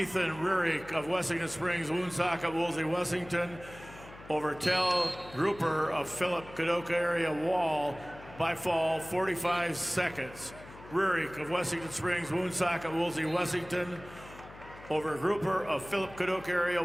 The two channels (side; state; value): left; noise; hum, 18 dB below the sound